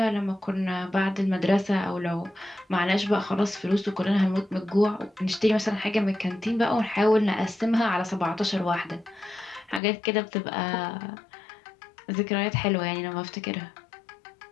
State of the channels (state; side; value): drops out; right; at 9.8 s